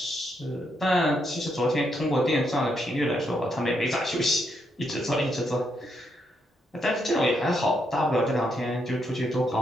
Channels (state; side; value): normal; both; correlation 0.78